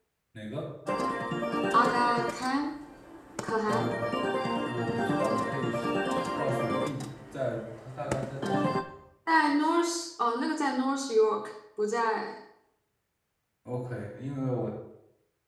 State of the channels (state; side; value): identical; both; correlation 1.00